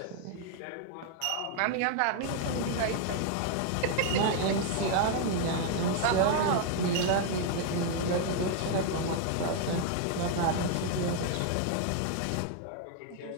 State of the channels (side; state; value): both; different; correlation 0.00